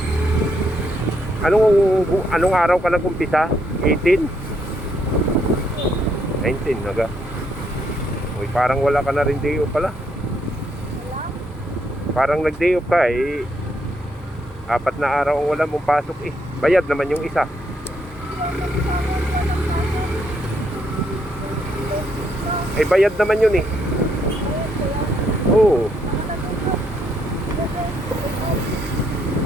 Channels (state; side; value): normal; both; correlation 0.74